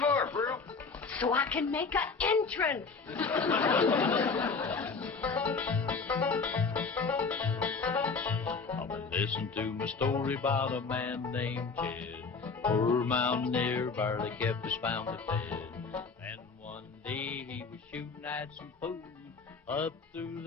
Pearl? So I can make an entrance. Listen to my story about a man named Jed. Poor mountaineer barely kept his family fed. And one day he was shooting at some food. Up through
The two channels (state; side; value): quieter; right; 4.7 dB